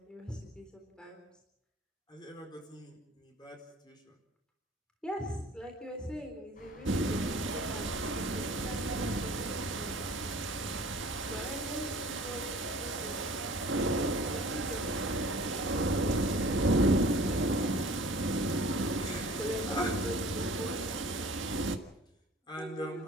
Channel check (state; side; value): normal; both; correlation 0.47